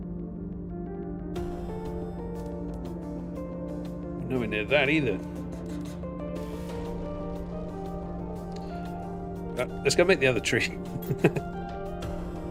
We're nowhere near that either. Let's go make the other tree.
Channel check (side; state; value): both; identical; correlation 1.00